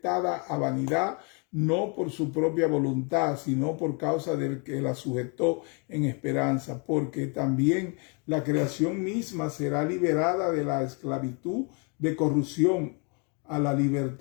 a vanidad, no por su propia voluntad, sino por causa del que la sujetó en esperanza, porque también la creación misma será liberada de la esclavitud de corrupción a la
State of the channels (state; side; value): quieter; right; 35.3 dB